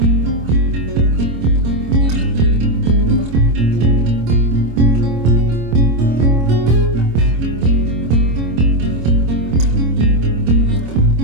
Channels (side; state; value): left; late; 25 ms